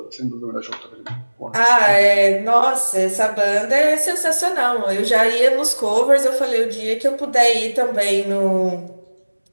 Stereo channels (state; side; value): inverted; both; correlation -1.00